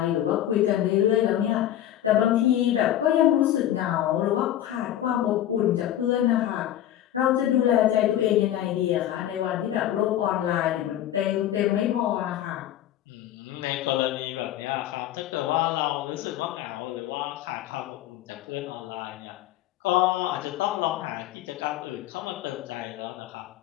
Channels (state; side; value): quieter; right; 12.2 dB